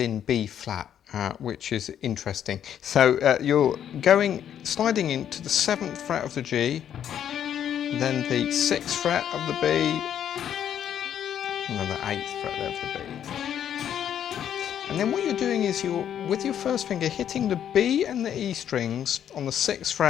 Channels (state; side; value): quieter; right; 9.7 dB